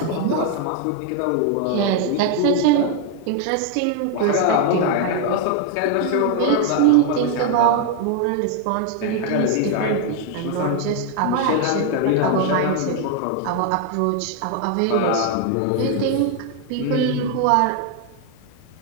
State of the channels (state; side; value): different; both; correlation 0.00